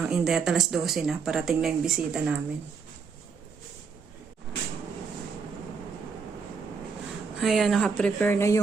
ng Inday at alas 12 na. Parating na yung bisita namin. Ayan, nakaprepare na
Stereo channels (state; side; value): quieter; left; 5.5 dB